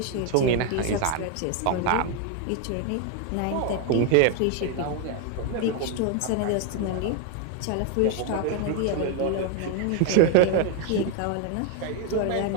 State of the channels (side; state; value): both; different; correlation 0.01